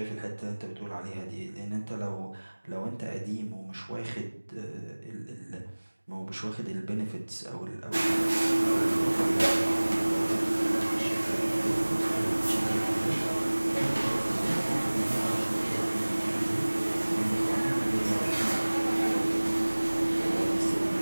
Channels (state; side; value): inverted; both; correlation -1.00